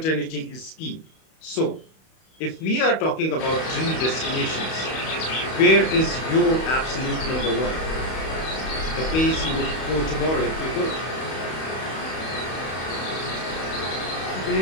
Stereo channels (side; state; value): right; late; 31 ms